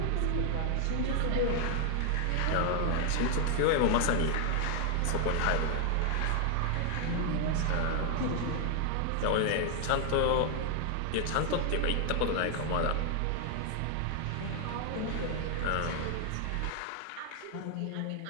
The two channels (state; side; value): different; both; correlation 0.00